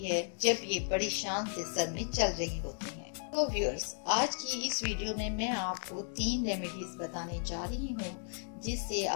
जब ये बड़ी शान से सर में चल रही होती हैं। तो व्यूअर्स, आज की इस वीडियो में मैं आपको 3 रेमेडीज बताने जा रही हूँ जिससे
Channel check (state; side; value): silent; right; 55 dB below the other